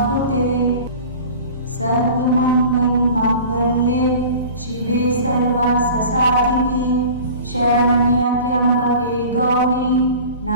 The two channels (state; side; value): inverted; both; correlation -0.40